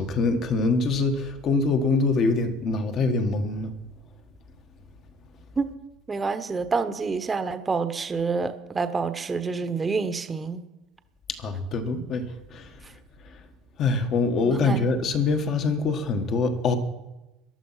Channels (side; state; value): both; normal; correlation 0.54